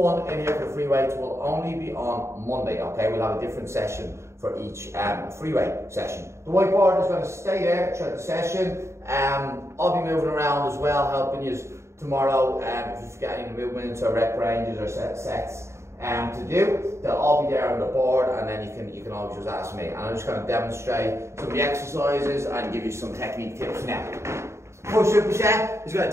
in here for free weights will only be on Monday, okay? We'll have a different session for each free weight session. The whiteboard is going to stay there throughout the session. I'll be moving around as well, helping you tomorrow if you've got any movements or rep ranges or sets to do. They'll all be there on the board, and then you can always just ask me. And I'm just going to demonstrate some of the exercises and give you some technique tips now. First superset is going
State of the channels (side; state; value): left; late; 0.13 ms